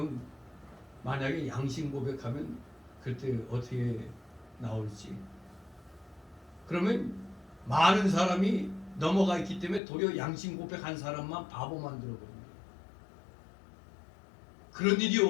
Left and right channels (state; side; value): drops out; right; at 9.8 s